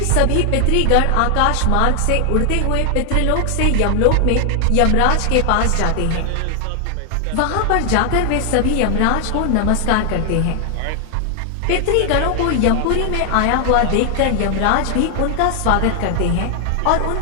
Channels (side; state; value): both; different; correlation 0.00